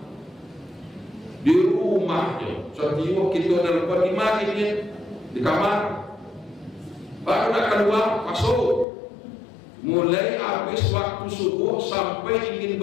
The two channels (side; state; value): right; drops out; at 8.8 s